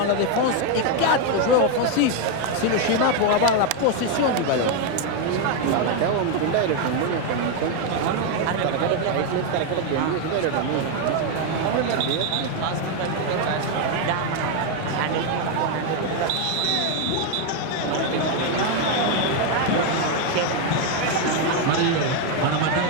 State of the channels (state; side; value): different; both; correlation 0.01